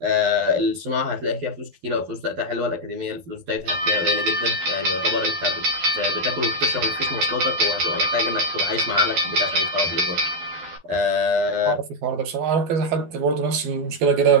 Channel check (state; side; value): late; left; 12 ms